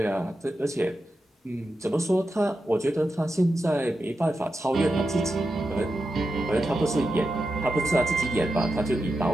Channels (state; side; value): normal; both; correlation 0.89